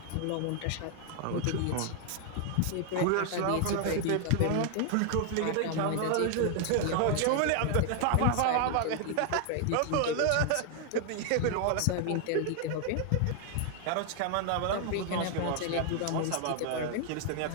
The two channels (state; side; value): different; both; correlation 0.00